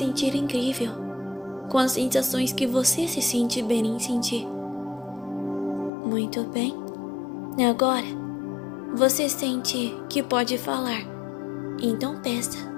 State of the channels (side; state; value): right; drops out; at 5.9 s